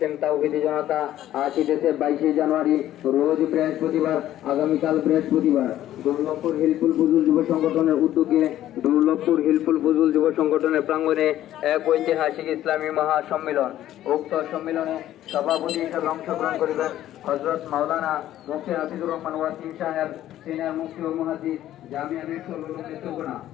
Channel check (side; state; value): right; quieter; 12.9 dB